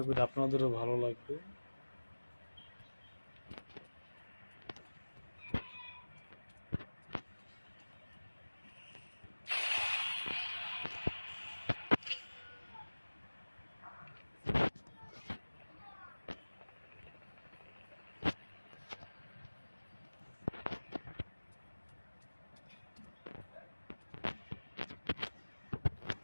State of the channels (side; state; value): both; inverted; correlation -1.00